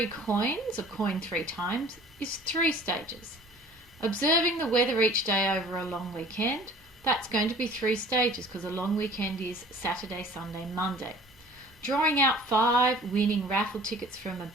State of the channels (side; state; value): both; normal; correlation 0.48